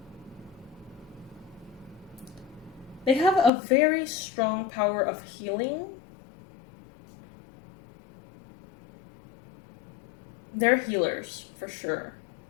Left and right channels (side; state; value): right; drops out; at 3.5 s